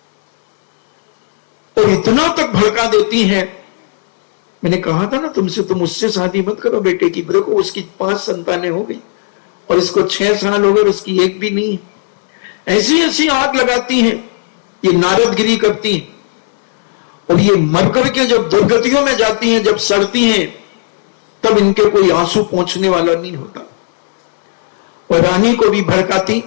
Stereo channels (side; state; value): right; silent; digital silence